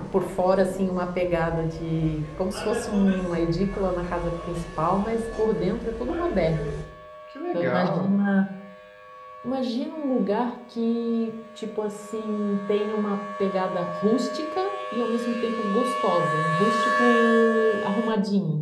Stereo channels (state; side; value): identical; both; correlation 1.00